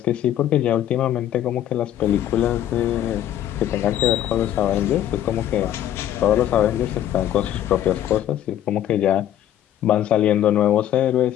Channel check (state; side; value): quieter; right; 11.5 dB